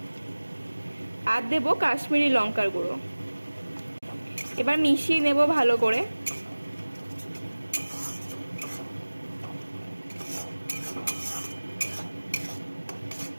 আর দেব কাশ্মীরি লঙ্কার গুঁড়ো। এবার মিশিয়ে নেব ভালো করে।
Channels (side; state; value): both; inverted; correlation -1.00